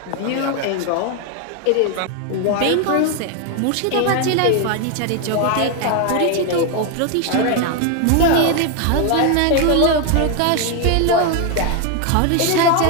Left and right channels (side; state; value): both; different; correlation 0.01